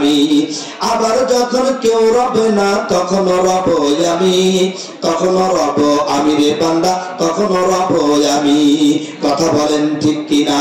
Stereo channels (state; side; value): identical; both; correlation 1.00